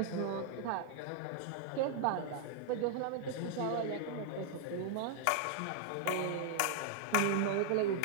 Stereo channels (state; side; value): different; both; correlation -0.01